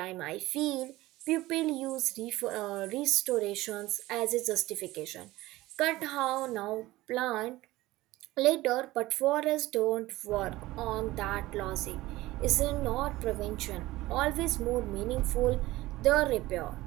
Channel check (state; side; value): quieter; left; 18.0 dB